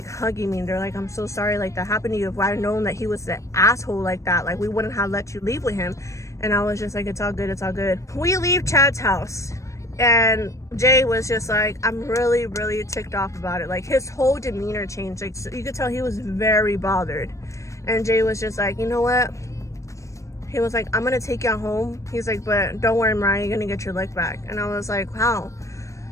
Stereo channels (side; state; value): right; late; 0.15 ms